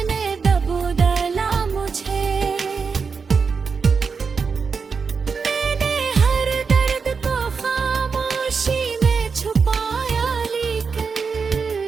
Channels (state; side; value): quieter; left; 5.3 dB